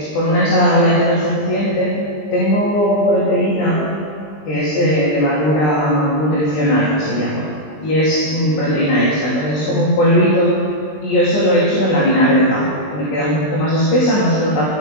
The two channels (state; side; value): late; right; 20 ms